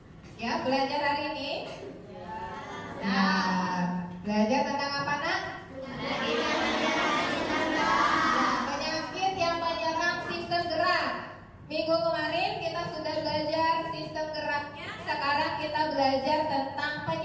Ya, belajar hari ini? Nah, belajar tentang apa nak? Penyakit yang menyerang sistem gerak. Minggu kemarin kita sudah belajar sistem geraknya. Sekarang kita belajar tentang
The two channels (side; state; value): both; identical; correlation 1.00